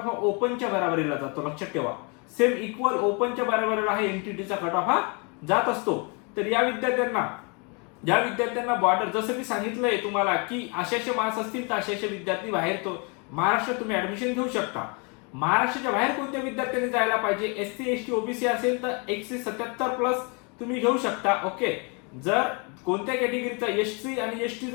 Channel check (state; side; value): quieter; right; 33.4 dB